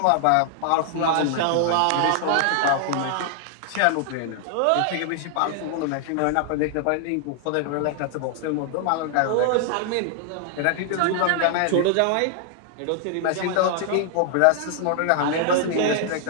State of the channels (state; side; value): different; both; correlation 0.00